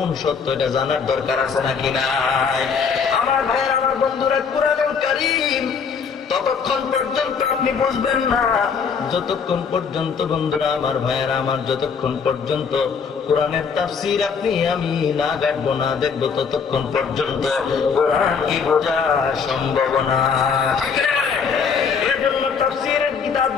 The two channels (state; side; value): quieter; right; 6.0 dB